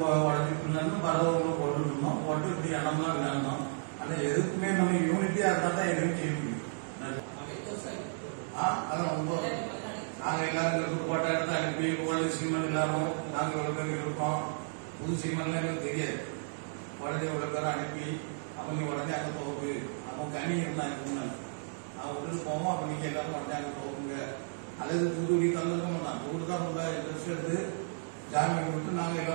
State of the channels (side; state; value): left; silent; digital silence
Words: பரவ போட்டு இருந்தோம். போட்டு இப்படி இடம்லாம் விளையாடணும். ஆனா எதுக்குமே நம்ம யூனிட்டியா இருந்தா தான் எதுவும் செய்ய முடியும். அதான் ரொம்ப நாங்க எல்லாரும் போட்ட இடத்த அனுப்பி ஓல்டு சீமன் எல்லாரும் நாங்க இவ்வளவு பேர் இருக்கோம். புது சீமன்லாம் எங்களுக்கு தெரியாது. உடனே இவ்வளவு பேரை அனுப்பி அப்ப நீ உடனே அங்க போகு. அப்போ கனி இருந்தாங்க முன்னாள் அவன் விட்டுட்டு போவோம். அப்ப நீங்க எல்லாரும் உடனே அங்க போகுங்க. அல்லது தூத்துக்குடி தந்துருக்கோம். நான் தூடு தான் ரொம்ப இன்ட்ரெஸ்ட் எடுத்து ஜாமீன் விட்டு நாங்க